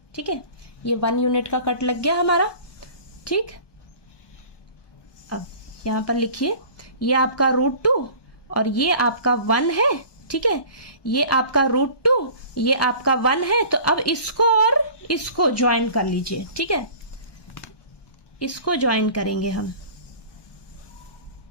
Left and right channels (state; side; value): late; right; 1.2 ms